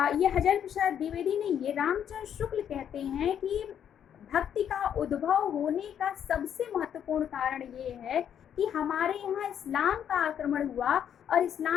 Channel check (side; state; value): right; quieter; 9.1 dB